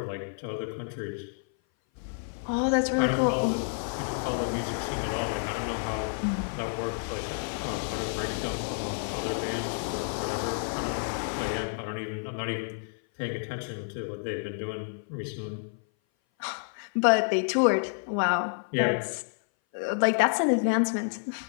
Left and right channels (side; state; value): right; silent; 57 dB below the other